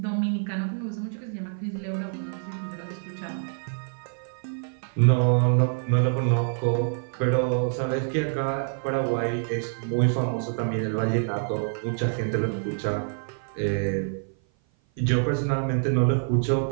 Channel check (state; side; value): silent; left; 56 dB below the other